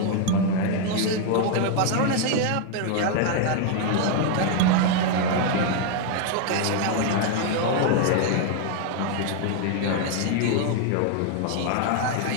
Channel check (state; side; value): different; both; correlation 0.00